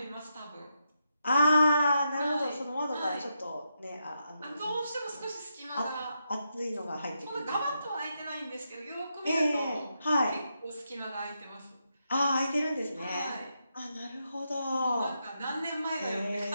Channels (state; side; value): inverted; both; correlation -0.83